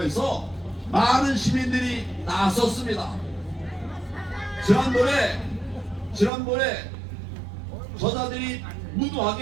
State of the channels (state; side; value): drops out; left; at 6.3 s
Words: 해서 많은 시민들이 나섰습니다. 지난번에 저자들이